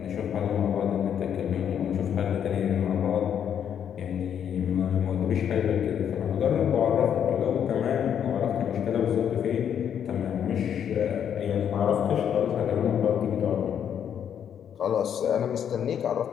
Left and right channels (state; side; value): quieter; right; 8.8 dB